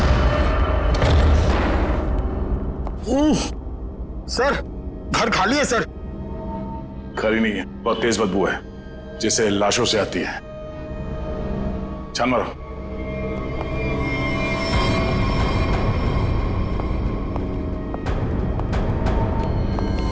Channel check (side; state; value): both; identical; correlation 1.00